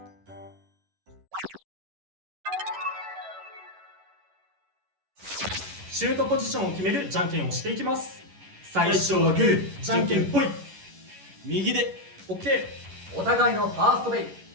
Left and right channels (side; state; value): left; late; 11 ms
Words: シュートポジションを決めるじゃんけんをしていきます。最初はグー、じゃんけんぽい。右で OK。 お互いのファーストベイ、